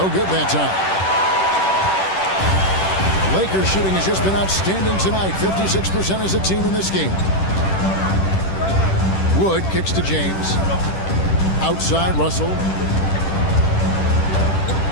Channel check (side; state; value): right; late; 10 ms